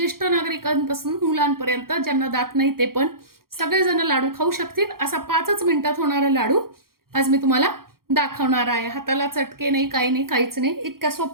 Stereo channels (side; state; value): left; late; 0.92 ms